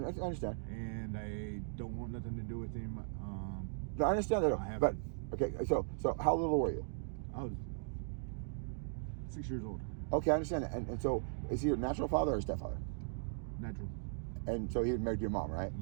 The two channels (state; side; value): silent; left; digital silence